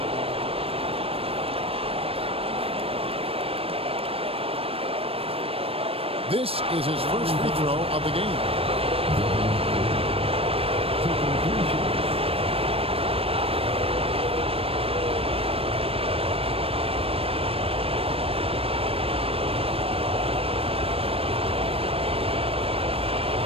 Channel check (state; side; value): late; left; 0.28 ms